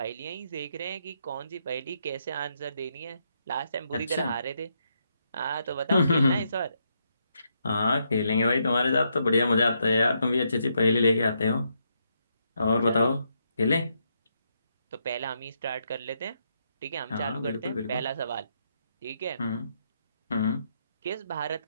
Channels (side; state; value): both; inverted; correlation -0.78